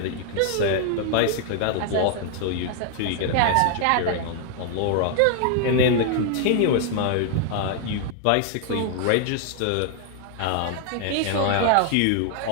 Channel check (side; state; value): both; different; correlation 0.00